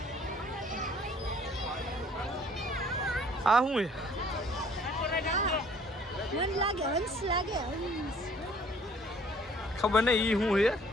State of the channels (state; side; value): normal; both; correlation 0.57